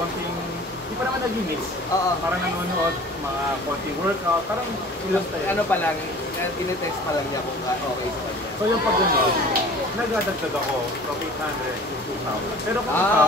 di pa naman nag-mix. Parang nanonood, mga konting workout, parang ilang tayo. Ano pa lang, tinetest pa lang niya kung okay sa kanya. So yung pag gano'n, nagdadagdag ako from 800 to 2,000. Pero kung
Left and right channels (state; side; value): normal; both; correlation 0.45